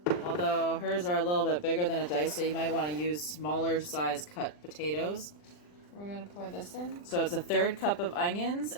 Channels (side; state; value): right; late; 40 ms